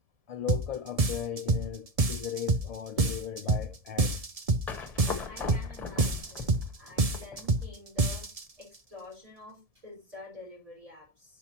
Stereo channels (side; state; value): left; late; 1.7 ms